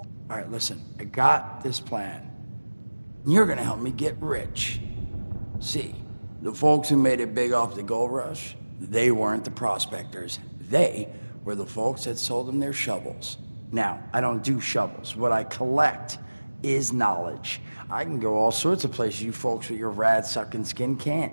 All right, listen, I got this plan. You're gonna help me get rich. See, the folks who made it big off the gold rush, they weren't the prospectors. They were the folks that sold them their shovels. Now, I don't do shovels. What I collect is knowledge. I can go all sorts of places you folks with your rad-sucking skin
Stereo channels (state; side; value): inverted; both; correlation -1.00